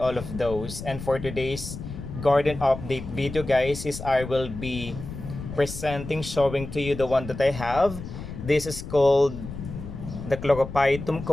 of those. And for today's garden update video, guys, is I will be showing to you the one that I have. This is called the Chlorophytum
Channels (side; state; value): left; noise; rumble, 10 dB below the sound